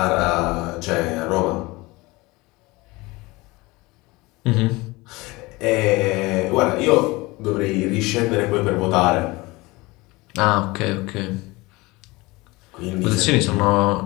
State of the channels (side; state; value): right; quieter; 22.5 dB